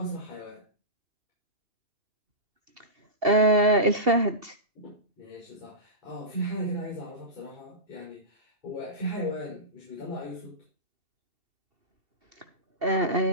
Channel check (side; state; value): left; late; 2.7 ms